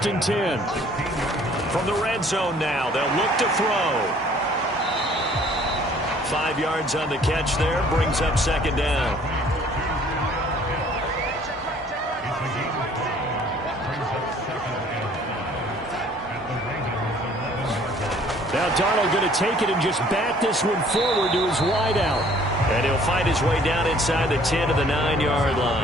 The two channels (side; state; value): both; normal; correlation 0.56